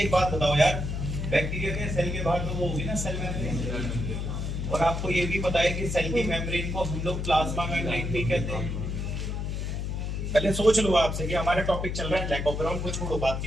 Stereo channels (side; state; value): left; noise; hum, 3 dB below the sound